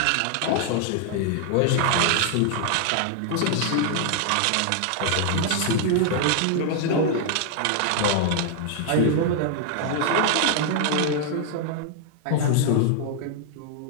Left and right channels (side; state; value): both; different; correlation 0.00